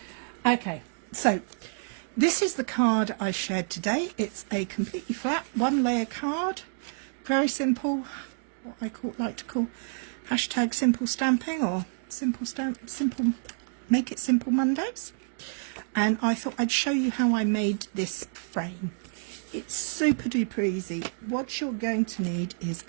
Okay, so this is the card I shared today. It's a completely flat, one layer card. Very simple, what I like to call hashtag simple stamping or simple make it simple Mondays. And I thought I'd show you how I made this frame. It's super duper easy. What you're going to need is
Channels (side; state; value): left; silent; digital silence